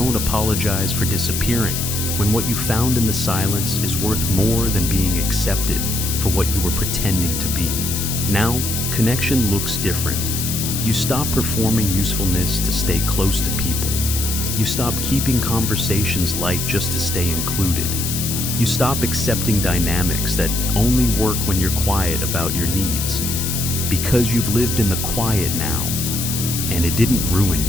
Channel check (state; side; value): noise; left; hiss, 3 dB below the sound